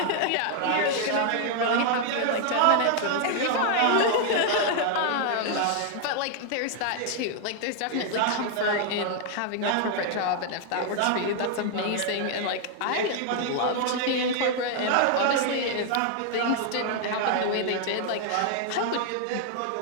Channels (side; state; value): both; different; correlation 0.00